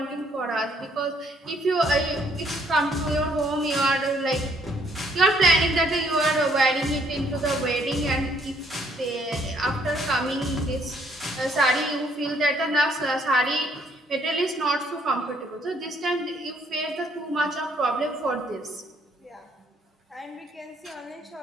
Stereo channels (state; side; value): normal; both; correlation 0.66